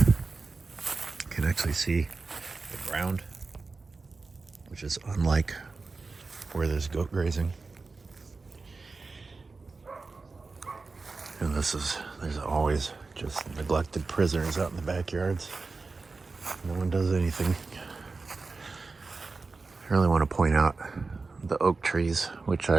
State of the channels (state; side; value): quieter; left; 4.0 dB